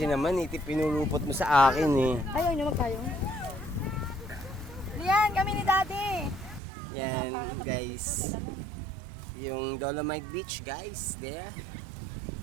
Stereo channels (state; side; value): drops out; left; at 6.6 s